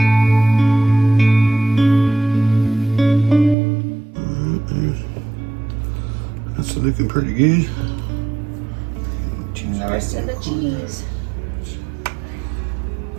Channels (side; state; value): left; drops out; at 3.6 s